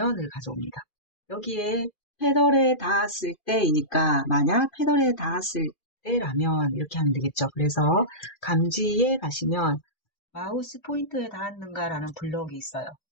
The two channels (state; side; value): late; right; 2.4 ms